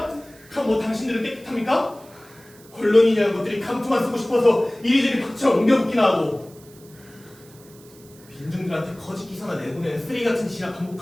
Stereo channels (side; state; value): right; noise; hiss, 25 dB below the sound